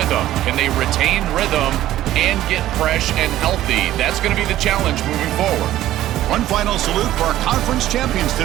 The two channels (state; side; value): quieter; left; 13.8 dB